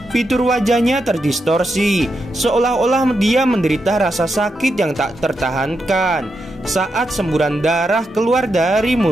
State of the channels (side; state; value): both; normal; correlation 0.85